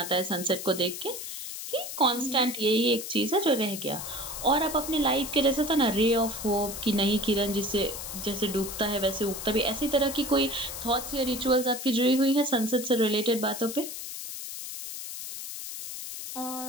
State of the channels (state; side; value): noise; left; hiss, 8 dB below the sound